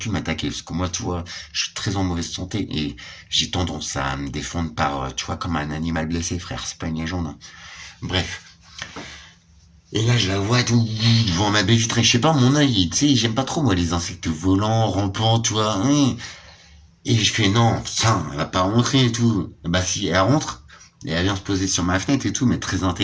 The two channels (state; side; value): identical; both; correlation 1.00